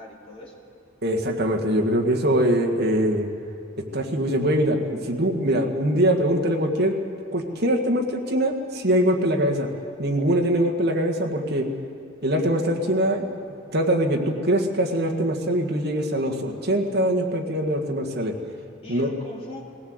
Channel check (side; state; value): both; normal; correlation 0.32